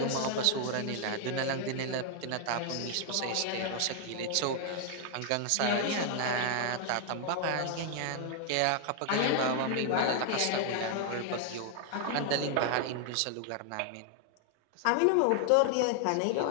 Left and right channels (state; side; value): different; both; correlation 0.00